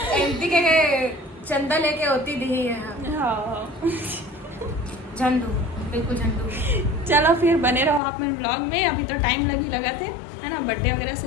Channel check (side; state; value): right; drops out; at 8.0 s